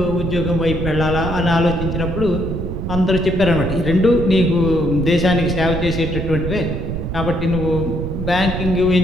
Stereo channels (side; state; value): right; noise; rumble, 4 dB below the sound